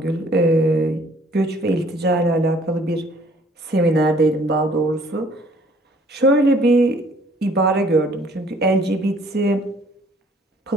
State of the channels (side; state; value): both; normal; correlation 0.58